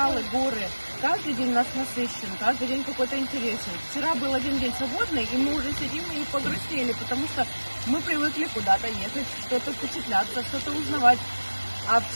горы. Каждый день у нас насыщен, каждый день какой-то интересен. Вчера был один день свободный, и мы уже сидим и погрустили, потому что мы привыкли куда-то ехать, что-то впечатляться, что-то узнавать. А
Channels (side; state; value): both; inverted; correlation -1.00